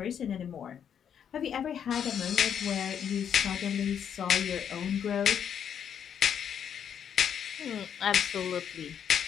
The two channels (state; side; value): quieter; right; 8.4 dB